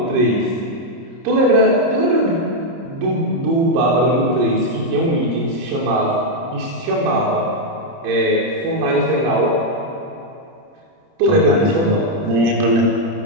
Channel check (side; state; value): left; late; 30 ms